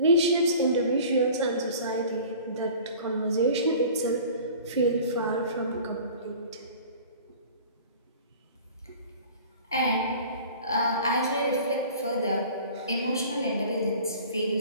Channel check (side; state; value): both; inverted; correlation -0.44